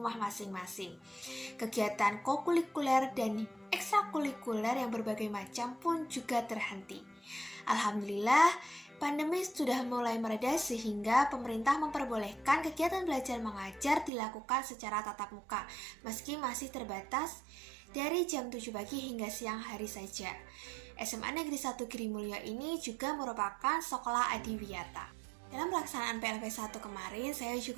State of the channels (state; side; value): drops out; left; at 14.1 s